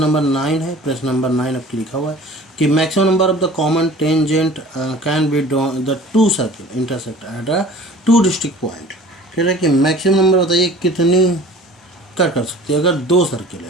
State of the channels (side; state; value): both; normal; correlation 0.45